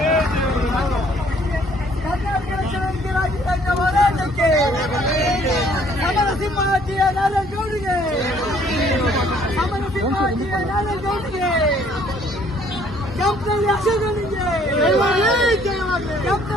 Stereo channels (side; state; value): both; normal; correlation 0.61